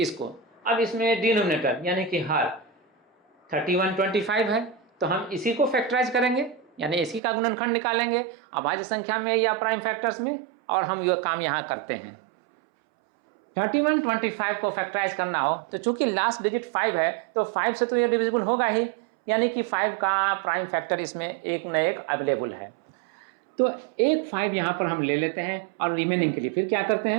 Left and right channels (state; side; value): drops out; left; at 7.2 s